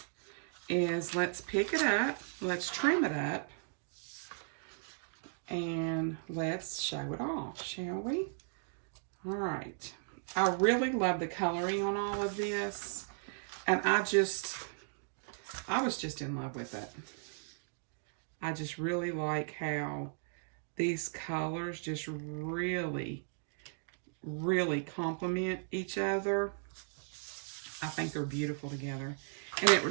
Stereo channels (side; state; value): left; silent; digital silence